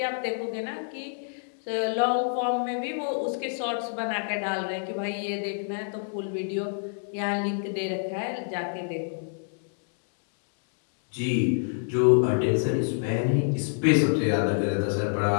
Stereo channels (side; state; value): right; silent; digital silence